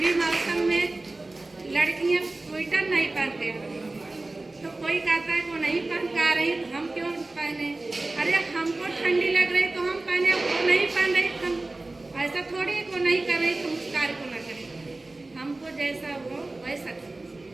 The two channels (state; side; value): quieter; left; 3.0 dB